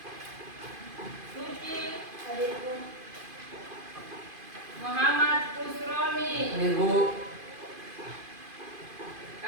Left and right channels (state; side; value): late; left; 2.5 ms